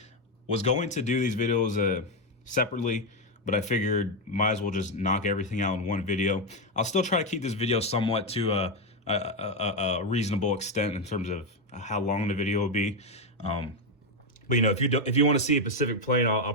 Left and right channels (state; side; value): normal; both; correlation 0.06